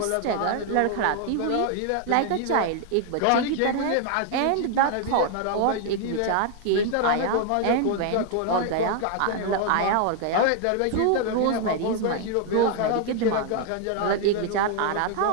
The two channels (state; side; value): different; both; correlation 0.00